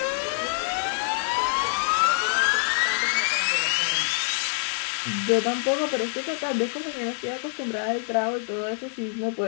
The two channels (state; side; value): silent; right; 58 dB below the other